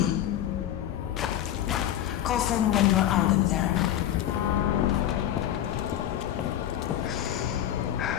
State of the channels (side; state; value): right; quieter; 11.6 dB